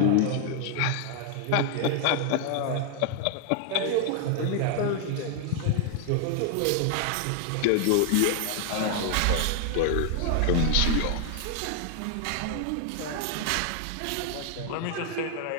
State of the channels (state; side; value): different; both; correlation 0.00